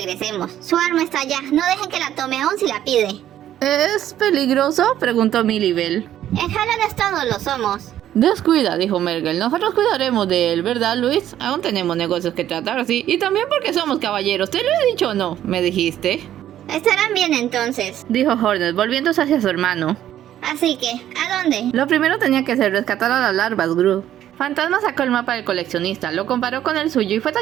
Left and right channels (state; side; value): quieter; left; 11.7 dB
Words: Su arma está allá. No dejen que la tome aún si la pide. ¿Es peligroso?, preguntó Milibel. En Hallownest todos lo somos. Descuida, dijo Mergal. Nosotros cuidaremos de él, ¿verdad, Luis? Aún tenemos negocios que tratar, sí. Y también porque somos caballeros. ¿Te lo he dicho o no? ¿Me dijiste? Estarán bien entonces, dijo Hornet, volviéndose hacia su hermano. Así que, ¿a dónde? Lo primero tenía que ser rescatar a las larvas, Gru. Fantasma sacó el mapa del coleccionista, lo comparó con el suyo y fue